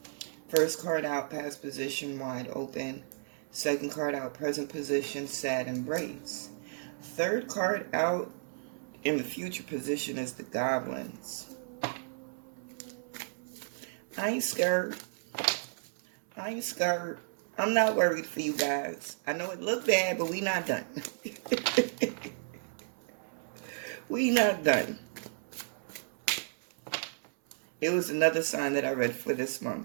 First card out, past position, wide open. Second card out, present position, sad embrace. Third card out in the future position is the goblins. I ain't scared. I'm not worried for you guys. I know it looked bad, but we not done. We not done. It was another sign that I read for this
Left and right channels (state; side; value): silent; left; 56 dB below the other